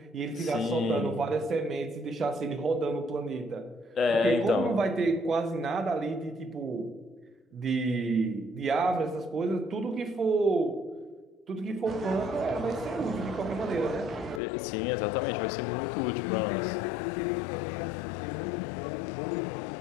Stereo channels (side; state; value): right; drops out; at 14.4 s